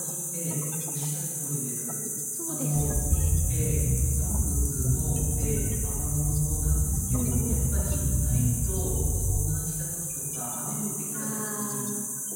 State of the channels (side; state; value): both; identical; correlation 1.00